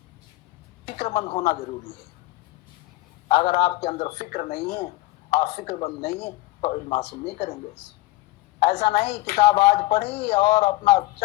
फिक्रमंद होना जरूरी है। अगर आपके अंदर फिक्र नहीं है, आप फिक्रमंद नहीं है, तो इल्म हासिल नहीं करेंगे। ऐसा नहीं किताब आज पढ़ी और अपना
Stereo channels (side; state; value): right; quieter; 18.5 dB